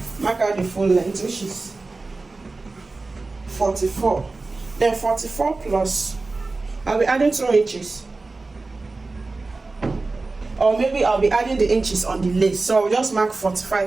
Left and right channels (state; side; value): quieter; left; 3.5 dB